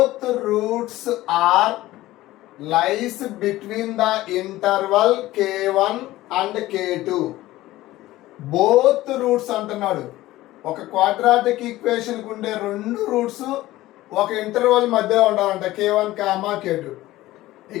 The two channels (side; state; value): right; quieter; 16.6 dB